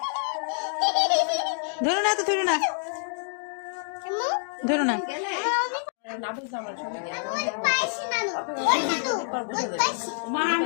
ধরো না, তো ধরো না, ধরো না।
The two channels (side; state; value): right; silent; 60 dB below the other